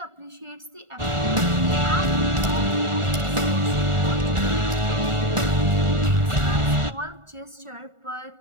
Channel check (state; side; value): late; left; 1.4 ms